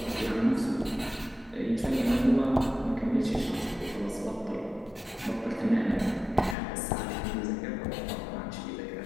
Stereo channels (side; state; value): right; drops out; at 6.6 s